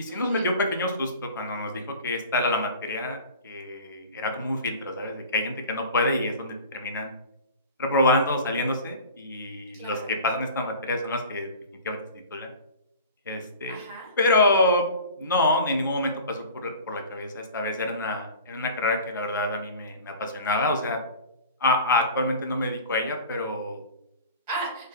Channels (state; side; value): inverted; both; correlation -0.40